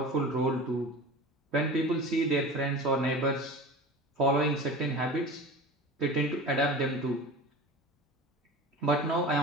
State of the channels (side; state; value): both; normal; correlation 0.35